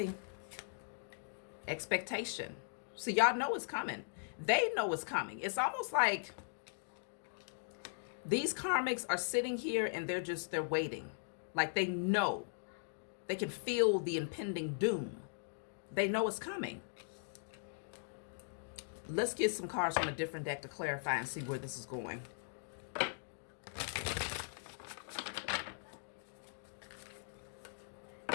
Expectation. So y'all know it's coming. They know it's coming. It's almost like these karmics are sitting here and they're waiting. Like they know. They can feel the impending doom. They know it's coming. Let's get some cards from a different deck to clarify and see where this is going.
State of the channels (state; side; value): silent; right; digital silence